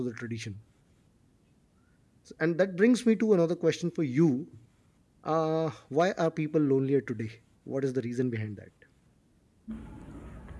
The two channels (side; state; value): both; identical; correlation 1.00